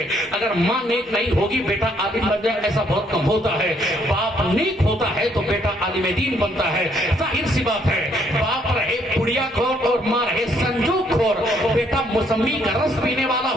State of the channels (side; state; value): both; normal; correlation 0.68